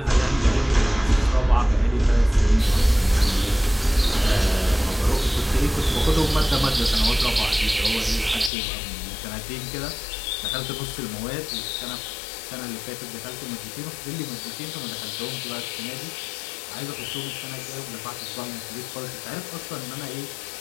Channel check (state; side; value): drops out; right; at 8.5 s